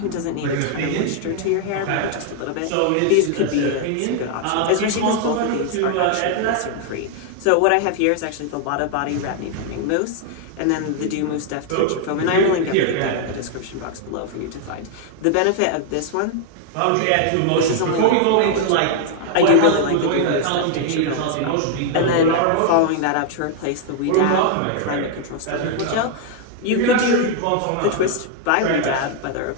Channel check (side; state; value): both; different; correlation 0.00